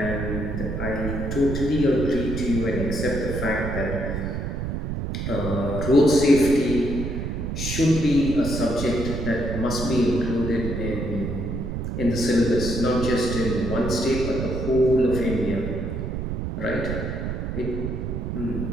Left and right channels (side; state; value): right; noise; rumble, 3 dB below the sound